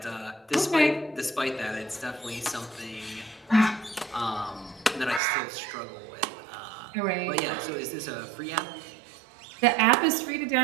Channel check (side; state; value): left; drops out; at 5.2 s